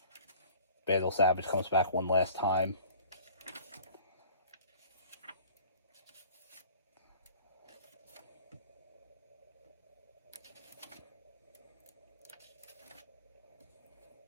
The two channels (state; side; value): inverted; both; correlation -0.47